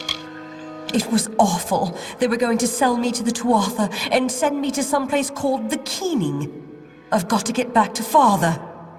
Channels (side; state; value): both; identical; correlation 1.00